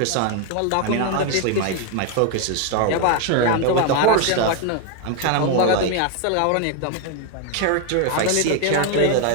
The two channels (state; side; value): different; both; correlation 0.01